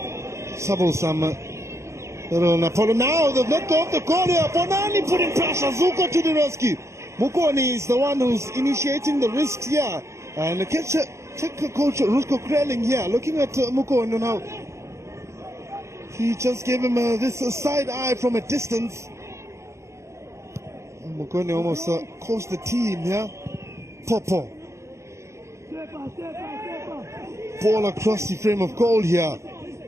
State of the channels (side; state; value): left; late; 0.14 ms